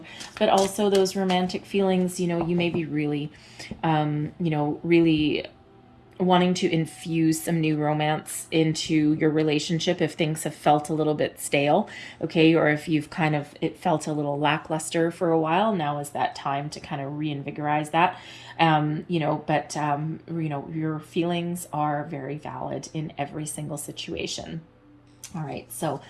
But also those romantic feelings, you may be really, really wanting to infuse some new romance into your relationship if things have felt a little bit stale, okay, or if it felt a little lackluster for a while. Now is that time to kind of reinvigorize that. Your feelings are very valid in every single situation. All right, so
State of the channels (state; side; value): identical; both; correlation 1.00